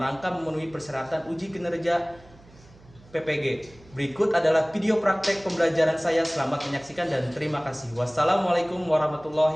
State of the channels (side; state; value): right; noise; hum, 25 dB below the sound